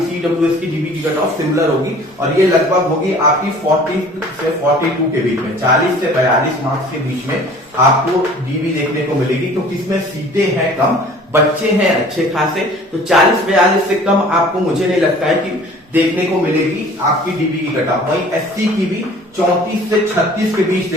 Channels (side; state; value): both; normal; correlation 0.49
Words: ईडब्ल्यूएस की डीबी की कट ऑफ सिमिलर होगी और ये लगभग होगी आपकी 40 से 42 के बीच में, 40 से 42 मार्क्स के बीच में आपको डीबी देखने को मिलेगी, क्योंकि इसमें सीटें हैं कम, बच्चे हैं अच्छे खासे। तो 40-42 से कम आपको मुझे नहीं लगता है कि देखने को मिलेगी आपकी डीबी की कट ऑफ। वहीं एससी की भी 34 से 36 के बीच